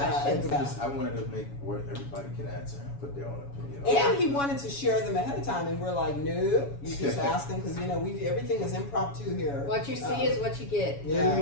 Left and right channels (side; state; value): right; late; 7.1 ms